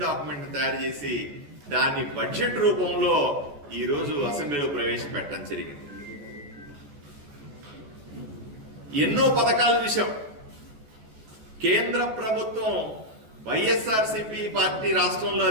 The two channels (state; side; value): late; left; 14 ms